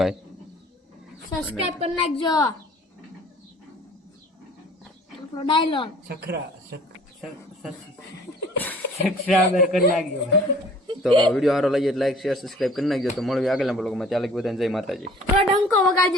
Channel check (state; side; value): normal; both; correlation 0.51